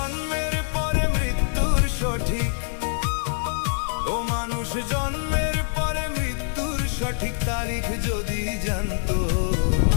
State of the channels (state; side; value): silent; right; digital silence